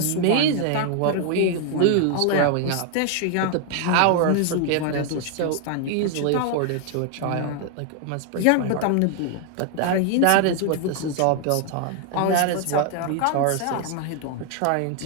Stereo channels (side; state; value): both; different; correlation 0.00